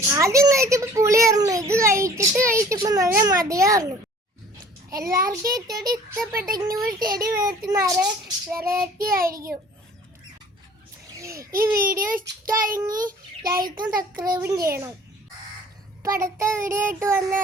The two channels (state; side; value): normal; both; correlation 0.50